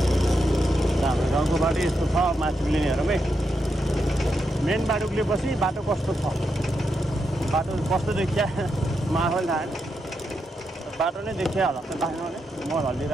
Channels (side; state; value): both; normal; correlation 0.84